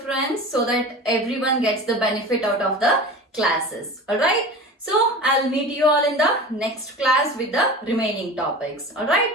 so that everyone gets the benefit out of the classes. Alright. So I'll meet you all in the next class with the remaining topics. Alright.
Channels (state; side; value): normal; both; correlation 0.34